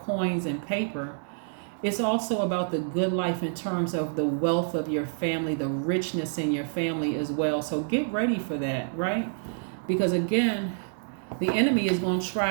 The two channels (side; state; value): left; silent; digital silence